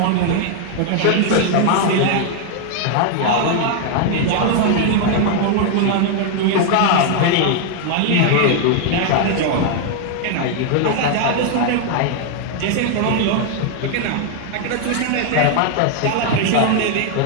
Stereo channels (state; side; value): different; both; correlation 0.00